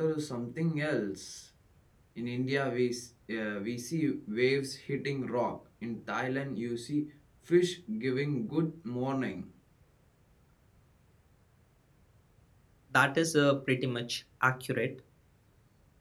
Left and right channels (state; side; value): identical; both; correlation 1.00